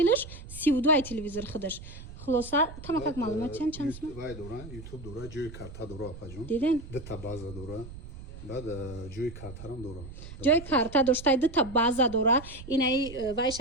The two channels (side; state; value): right; noise; rumble, 14 dB below the sound